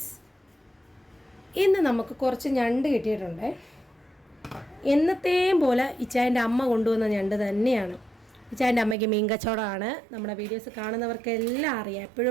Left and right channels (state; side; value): drops out; left; at 9.0 s